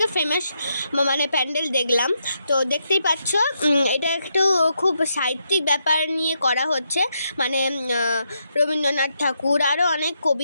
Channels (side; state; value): both; inverted; correlation -0.80